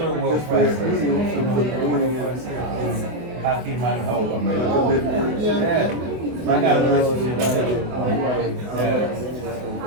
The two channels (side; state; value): left; late; 24 ms